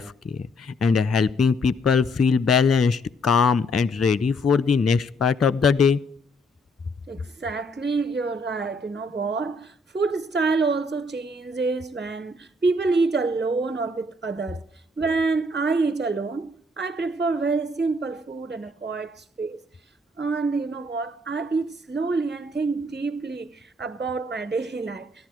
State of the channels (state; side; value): normal; both; correlation 0.68